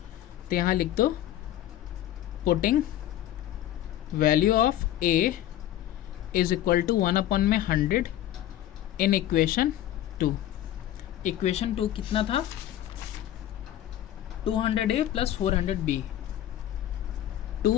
तो यहाँ लिख दो putting value of a is equal to 1 upon में 100 इन इक्वेशन 2, इक्वेशन 2 कितना था 200a plus 400b,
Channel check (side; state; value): right; quieter; 12.6 dB